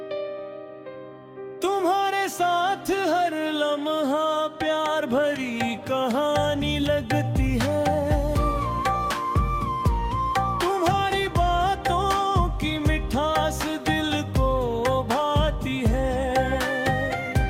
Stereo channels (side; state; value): both; identical; correlation 1.00